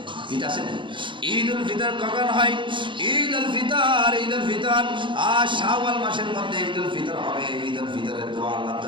ঈদ আছে, ঈদুল ফিতর কখন হয়? ঈদুল ফিতর আর শাওয়াল মাসের মধ্যে ঈদুল ফিতর হবে। ঈদুল ফিতরের দোয়া আল্লাহর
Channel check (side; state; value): left; late; 0.24 ms